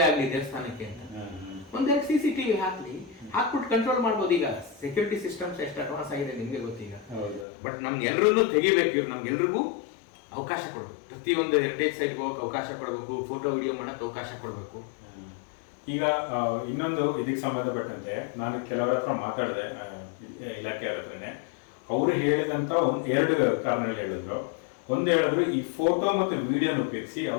ಆಗ್ಲಿ ದೇವಸ್ಥಾನಕ್ಕೆ ಅಂತ 1-2 CCTV ಹಾಕ್ಲಿ, ಹಾಕ್ಬಿಟ್ಟು ಕಂಟ್ರೋಲ್ ಮಾಡ್ಬೋದು. ಈಗ ಸೆಕ್ಯೂರಿಟಿ ಸಿಸ್ಟಮ್ಸ್ ಎಷ್ಟು ಅಡ್ವಾನ್ಸ್ ಆಗಿದೆ ನಿಮ್ಗೆ ಗೊತ್ತೀಗ. ಬಟ್ ನಮ್ಗೆ ಎಲ್ರೂ ತೆಗಿಬೇಕು. ಇವ್ರು ನಮ್ಗೆಲ್ರಿಗೂ ಅವಕಾಶ ಕೊಡ್ಬೇಕು. ಪ್ರತಿಯೊಂದು ಹೆರಿಟೇಜ್ ಸೈಟ್ಗೆ ಹೋಗಕ್ಕೆ ಅವಕಾಶ ಕೊಡಬೇಕು, ಫೋಟೋ ವಿಡಿಯೋ ಮಾಡಕ್ಕೆ ಅವಕಾಶ ಕೊಡಬೇಕು. ಈಗ ಇನ್ನೊಂದು ಇದಕ್ಕೆ ಸಂಬಂಧಪಟ್ಟಂತೆ ನಾನು ಕೆಲವರ ಹತ್ರ ಮಾತಾಡಿದೆ, ಇಲಾಖೆಯವರ ಹತ್ರನೇ. ಅವರು ಹೇಳಿದಂತ 2 ಕಾರಣಗಳು ಹೇಳಿದ್ರು. ಒಂದು ಹೇಳಿದ್ರು, ಈ ಫೋಟೋ ಮತ್ತು ವಿಡಿಯೋನ ಉಪಯೋಗಿಸಿ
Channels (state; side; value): drops out; right; at 7.5 s